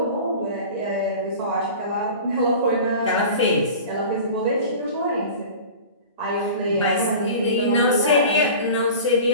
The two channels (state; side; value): inverted; both; correlation -0.37